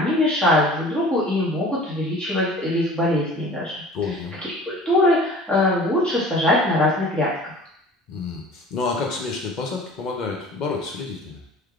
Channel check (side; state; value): both; normal; correlation 0.44